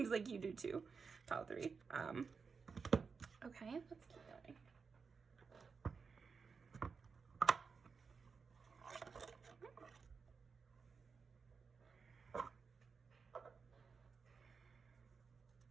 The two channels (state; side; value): quieter; left; 5.3 dB